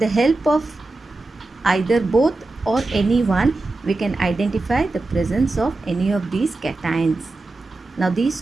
help of either both or any one, we can identify the presence of any of these cations. Now these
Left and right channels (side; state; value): left; quieter; 3.2 dB